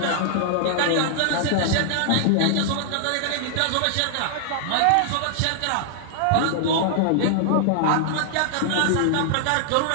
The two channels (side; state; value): both; different; correlation -0.01